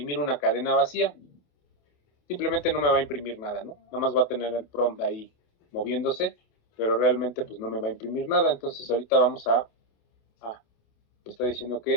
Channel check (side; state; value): right; late; 28 ms